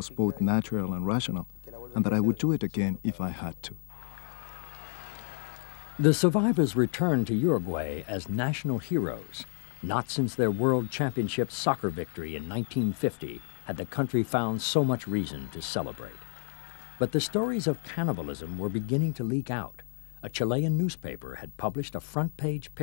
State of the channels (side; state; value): right; silent; digital silence